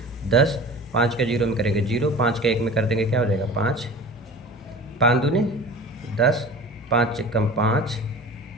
10, 5 का 0 में करेंगे 0, 5 का 1 में कर देंगे, क्या हो जाएगा 5, 5 दूनी 10, 5 एकम 5,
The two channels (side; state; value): both; normal; correlation 0.39